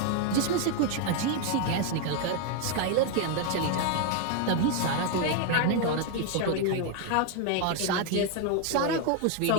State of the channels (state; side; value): different; both; correlation 0.01